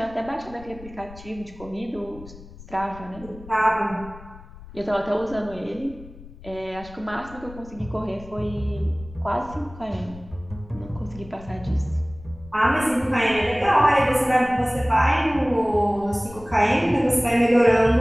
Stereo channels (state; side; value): noise; left; rumble, 18 dB below the sound